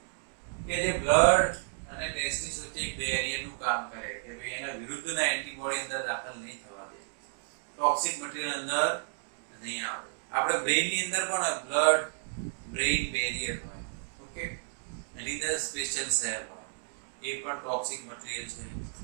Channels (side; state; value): left; silent; digital silence